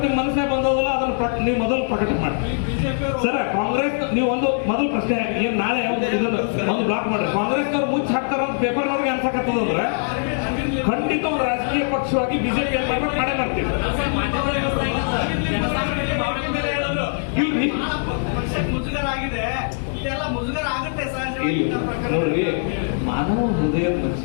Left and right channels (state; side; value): silent; right; digital silence